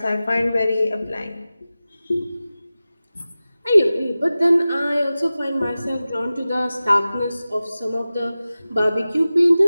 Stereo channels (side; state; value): both; inverted; correlation -0.96